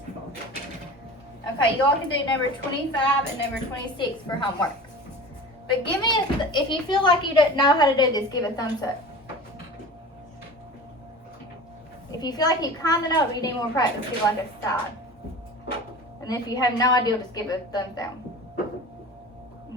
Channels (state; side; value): normal; both; correlation 0.36